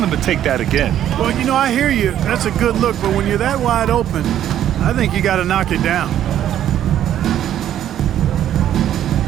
him to take that again. Well, you know, I hear you. That's a good look, but when you're that wide open, I think you got to knock it down.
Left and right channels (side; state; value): left; quieter; 11.1 dB